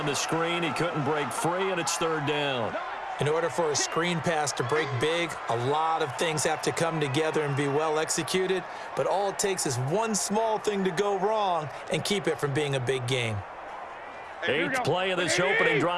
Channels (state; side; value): identical; both; correlation 1.00